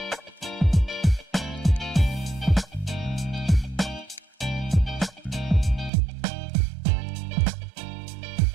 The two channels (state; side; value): drops out; left; at 5.9 s